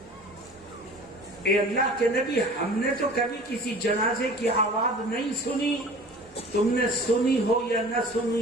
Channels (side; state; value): both; normal; correlation 0.43